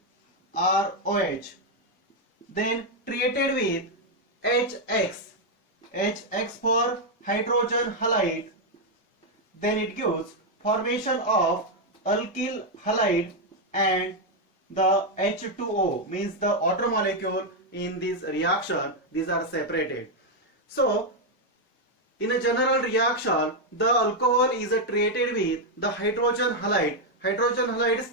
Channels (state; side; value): normal; both; correlation 0.01